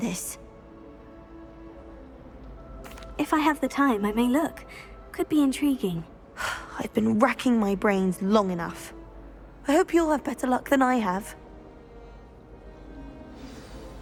If I have the time, I may look. Could be intriguing. I've been racking my brains long enough. I hope you'll have better luck than I have.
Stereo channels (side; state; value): both; identical; correlation 1.00